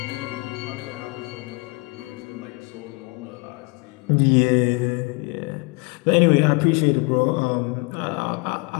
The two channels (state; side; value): quieter; right; 28.4 dB